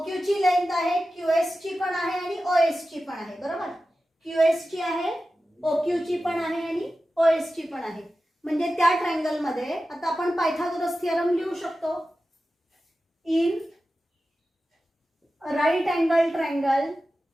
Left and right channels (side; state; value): both; normal; correlation 0.93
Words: ची लेंथ आहे, QS ची पण आहे आणि OS ची पण आहे, बरोबर. QS ची आहे, OQ ची पण आहे आणि OS ची पण आहे. म्हणजे त्या ट्रायंगल मध्ये आता आपण पायथागोरस थिअरम लिहू शकतो. In right angle triangle